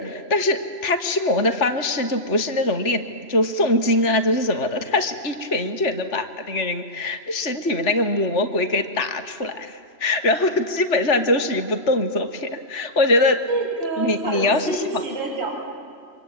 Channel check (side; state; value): right; late; 3.4 ms